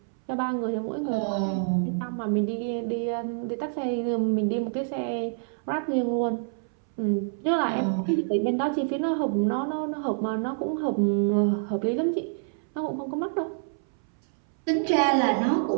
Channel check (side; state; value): left; silent; 60 dB below the other